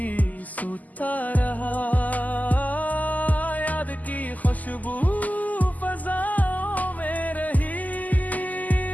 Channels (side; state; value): right; late; 0.079 ms